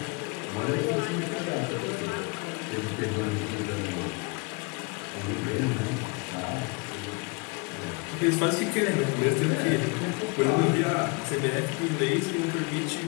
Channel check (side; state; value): right; quieter; 29.9 dB